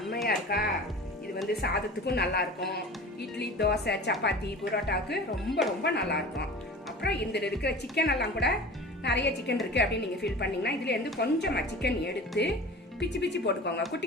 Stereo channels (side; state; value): both; normal; correlation 0.38